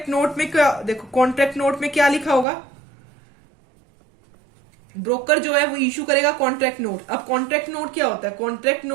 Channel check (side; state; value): left; drops out; at 2.5 s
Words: नोट में क्या, देखो कॉन्ट्रैक्ट नोट में क्या लिखा होगा, ब्रोकर जो है वो इशू करेगा कॉन्ट्रैक्ट नोट। अब कॉन्ट्रैक्ट नोट क्या होता है, कॉन्ट्रैक्ट